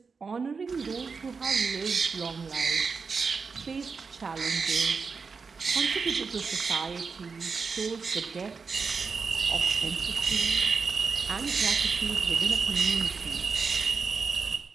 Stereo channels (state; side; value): quieter; left; 5.1 dB